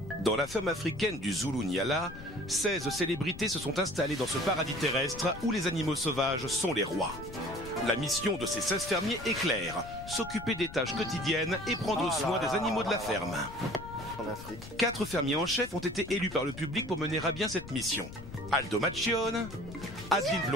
Dans la ferme africaine du Zulu-Nyala, 16 célébrités se sont installées dans ce paradis terrestre où les animaux sauvages sont les rois. La mission de ces 16 fermiers est claire, s'occuper des tâches quotidiennes et prendre soin des animaux de la ferme. 4 fermiers en chef ont été élus par le public pour mener à bien cette mission. Aldo Macchione, Adeline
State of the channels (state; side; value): noise; left; rumble, 13 dB below the sound